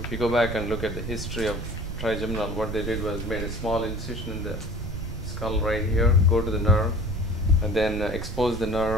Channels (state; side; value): noise; right; rumble, 6 dB below the sound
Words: you go back and look at the history of trigeminal, what they did was made a small incision in the skull right here, go to the nerve, and then expose the